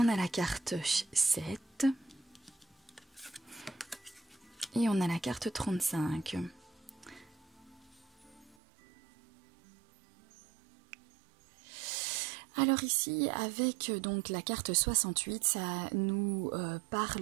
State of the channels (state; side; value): drops out; left; at 8.6 s